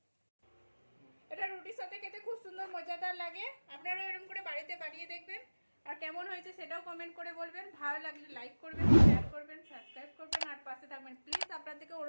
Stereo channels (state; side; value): inverted; both; correlation -1.00